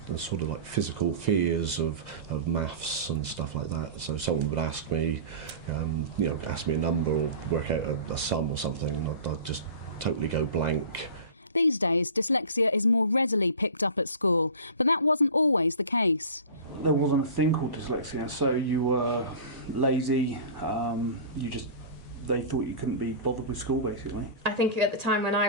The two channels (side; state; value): both; inverted; correlation -0.35